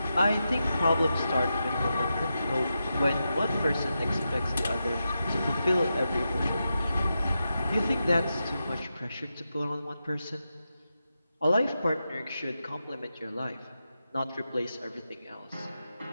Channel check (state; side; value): inverted; both; correlation -0.88